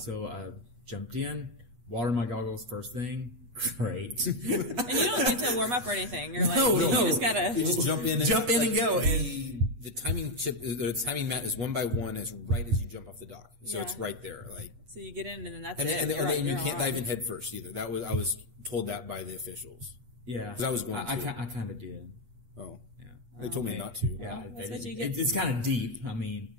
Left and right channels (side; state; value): left; late; 8.3 ms